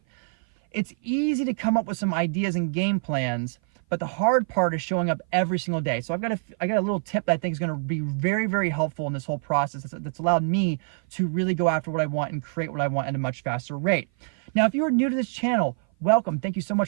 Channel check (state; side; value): silent; left; 56 dB below the other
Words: it's easy to come up with some ideas and game plans, but the hard part is showing up every single day. So I got a little tip that I think is going to be very, very helpful in this whole process that's allowed me to really go after what I want and create what I want at a much faster rate. Now, if you are new to this channel, welcome. Thank you so